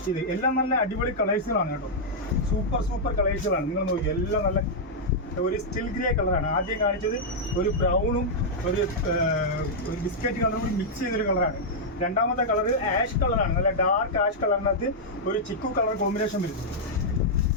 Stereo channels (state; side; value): normal; both; correlation -0.06